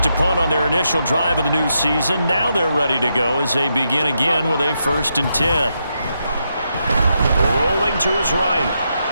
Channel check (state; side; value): inverted; both; correlation -0.82